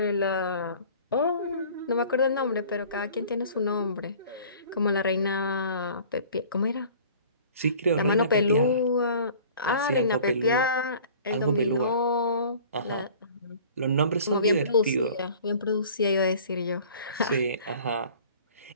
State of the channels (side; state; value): both; inverted; correlation -0.48